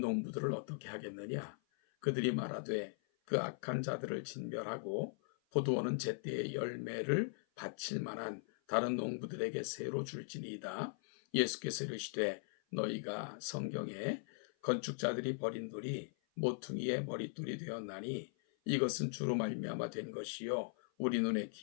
어떻게 하겠느냐? 그들이 말하되 그 악한 자들을 진멸하고 포도원은 제때의 열매를 바칠 만한 다른 농부들에게 새로 줄지니이다. 예수께서 이르시되 너희가 성경에 건축자들이 버린 돌이 모퉁이의 머릿돌이 되었나니 이것은 주로 말미암아 된 것이요 우리 눈에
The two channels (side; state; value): right; silent; 51 dB below the other